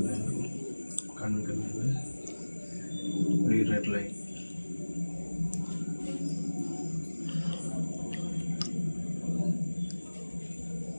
கண்ணுக்கு மேலே ரெட் லைன்.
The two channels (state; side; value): inverted; both; correlation -1.00